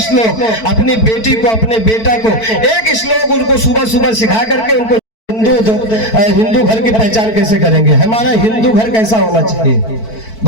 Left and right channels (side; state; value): right; late; 4.5 ms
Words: श्लोक। अपनी बेटी को, अपने बेटा को एक श्लोक उनको सुबह सुबह सिखा करके उनको हिंदू घर की पहचान कैसे करेंगे? हमारा हिंदू घर कैसा होना चाहिए